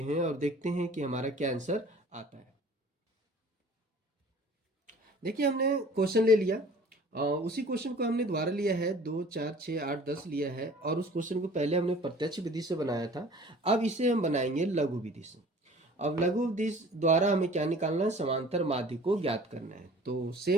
हैं और देखते हैं कि हमारा क्या आंसर आता है। देखिए हमने क्वेश्चन ले लिया, उसी क्वेश्चन को हमने दोबारा लिया है, 2 4 6 8 10 लिया है, और उस क्वेश्चन को पहले हमने प्रत्यक्ष विधि से बनाया था। अब इसे हम बनाएंगे लघु विधि से। अब लघु विधि द्वारा हमें क्या निकालना है, समांतर माध्य को ज्ञात करना है। तो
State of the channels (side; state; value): both; normal; correlation 0.47